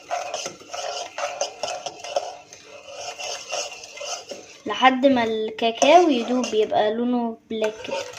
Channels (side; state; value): both; identical; correlation 1.00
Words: لحد ما الكاكاو يدوب يبقى لونه بلاك كده.